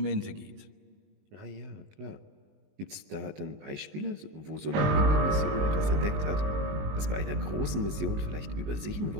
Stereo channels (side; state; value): left; late; 20 ms